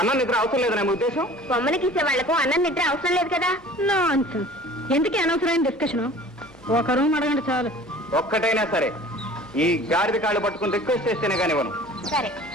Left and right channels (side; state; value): both; normal; correlation 0.45